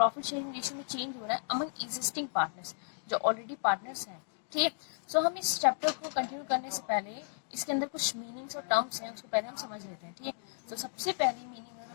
शेयरिंग रेशियो में चेंज हो रहा है अमंग एग्जिस्टिंग पार्टनर्स, जो ऑलरेडी पार्टनर्स हैं. ठीक है, सो हम इस चैप्टर को कंटिन्यू करने से पहले इसके अंदर कुछ मीनिंग्स और टर्म्स हैं, उसको पहले हम समझ लेते हैं. ठीक है, तो सबसे पहली मीनिंग अगर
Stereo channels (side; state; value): right; silent; digital silence